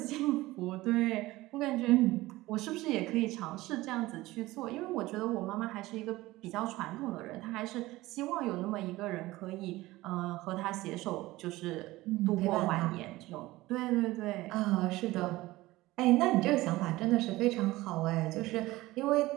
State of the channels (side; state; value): left; quieter; 18.5 dB